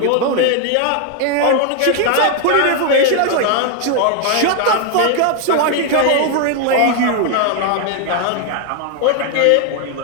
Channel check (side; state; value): both; different; correlation 0.00